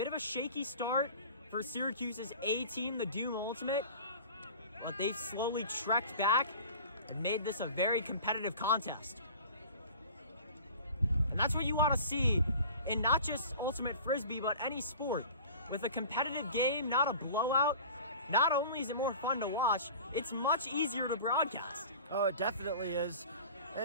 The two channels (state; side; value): inverted; both; correlation -0.41